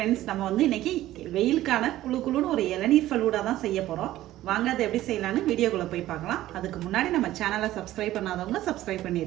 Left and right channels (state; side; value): quieter; left; 14.7 dB